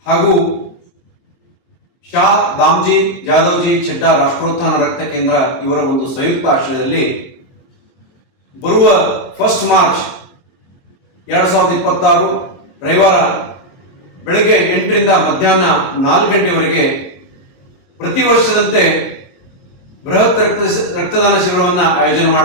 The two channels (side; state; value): right; late; 22 ms